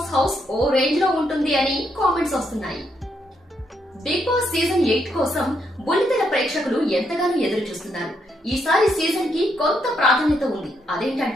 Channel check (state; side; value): normal; both; correlation 0.77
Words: హౌస్ ఓ రేంజ్ లో ఉంటుంది అని కామెంట్స్ వస్తున్నాయి. బిగ్ బాస్ సీజన్ 8 కోసం బుల్లితెర ప్రేక్షకులు ఎంతగానో ఎదురు చూస్తున్నారు. ఈసారి సీజన్ కి కొంత ప్రాధాన్యత ఉంది.